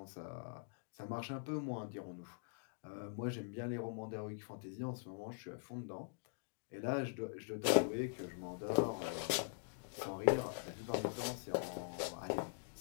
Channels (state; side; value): silent; right; digital silence